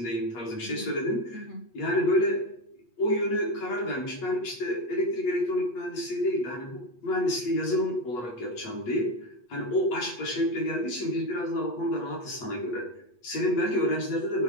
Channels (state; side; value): late; right; 8.3 ms